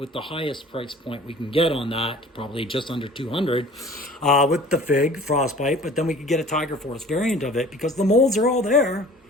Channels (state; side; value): normal; both; correlation 0.46